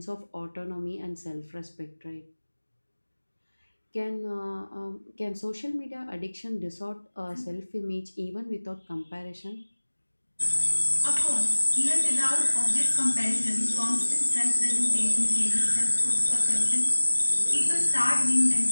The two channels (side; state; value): both; inverted; correlation -1.00